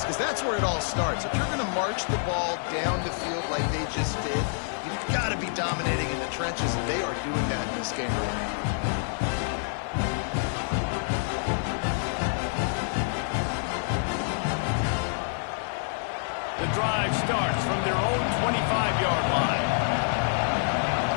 because that's where it all starts. If you're going to march the ball down the field like they just did, you've got to be dominating in the trenches, and they are doing that in this game. The drive starts from their own 25-yard line.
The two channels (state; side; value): silent; right; 60 dB below the other